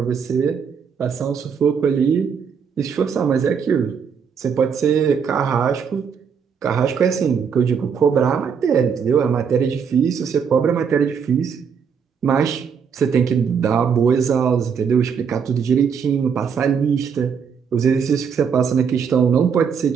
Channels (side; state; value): left; quieter; 6.7 dB